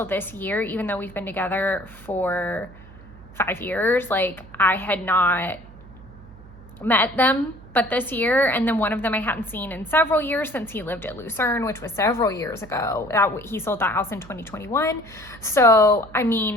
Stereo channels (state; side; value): noise; right; hum, 20 dB below the sound